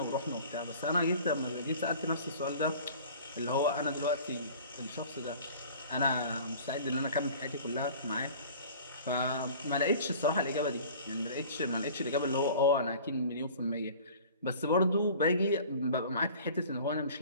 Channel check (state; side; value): inverted; both; correlation -0.44